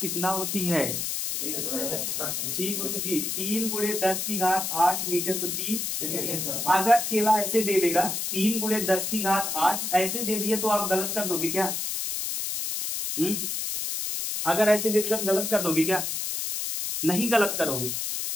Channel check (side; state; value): left; noise; hiss, 2 dB below the sound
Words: कितना होती है? जी गुरु जी, 3 × 10⁸ मीटर प्रति। अगर चेला ऐसे दे देगा 3 × 10⁸ ऐसे दे दिए तो आप गलत कर दोगे क्या? अगर ऐसे देकर गलत कर दोगे क्या? नहीं गलत करोगे।